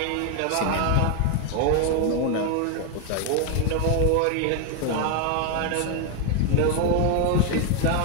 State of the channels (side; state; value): both; different; correlation 0.01